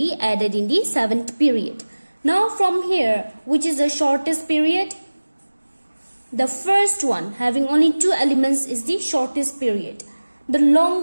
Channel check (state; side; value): inverted; both; correlation -1.00